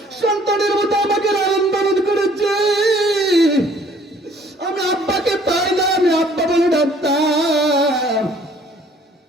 সন্তানের মতো আমাকে লালন পালন করেছে। আমি আব্বাকে পাই না, আমি আব্বা বলে ডাকতাম।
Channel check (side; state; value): both; normal; correlation 0.58